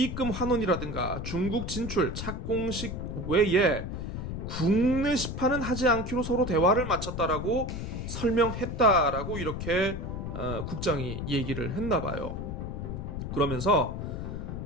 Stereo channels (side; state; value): left; noise; rumble, 5 dB below the sound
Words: 환원이라든가 중국 진출 착공식 외에 국내 시판은 하지 않기로 서로 대화를 마쳤다라고 설명했다라고 이렇게 국장이 얘기를 했나 봐요. 그러면서